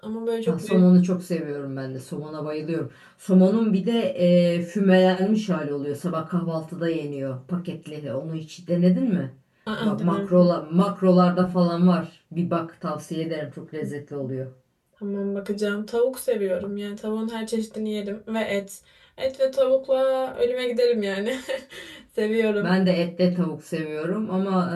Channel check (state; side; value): identical; both; correlation 1.00